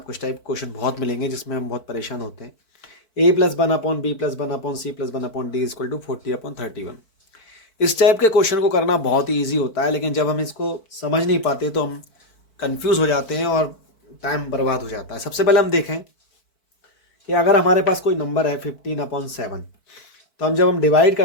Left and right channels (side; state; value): right; late; 4.5 ms